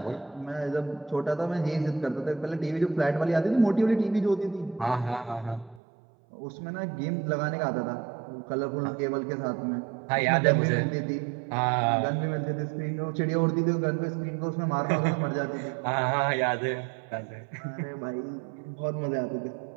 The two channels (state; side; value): drops out; left; at 5.8 s